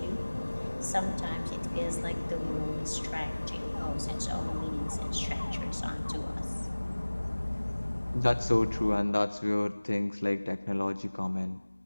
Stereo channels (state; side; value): inverted; both; correlation -1.00